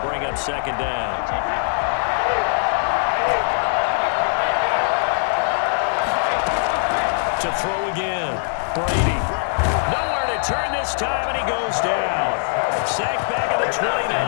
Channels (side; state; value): right; silent; digital silence